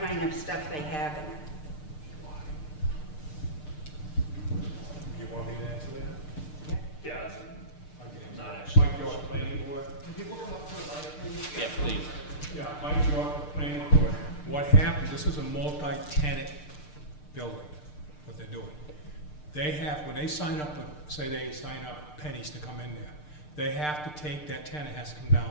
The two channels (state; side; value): late; right; 6.7 ms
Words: kind of stuff they have in it? You want me to answer that? Yeah, not actually. Mike York, Planning Board. Can people come up to the mic, please? Yeah, please. Yeah, Mike York, the Planning Board. What happened, this is a multi-tenant building, what they're doing. They have, when they sign up, say they sign up pennies to come in there, they have to take, that tenant has to come down